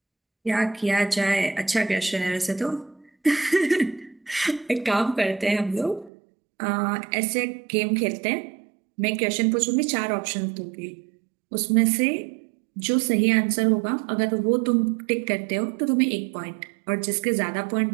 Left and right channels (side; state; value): left; drops out; at 6.1 s